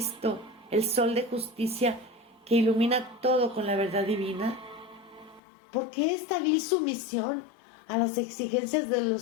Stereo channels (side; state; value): right; drops out; at 5.4 s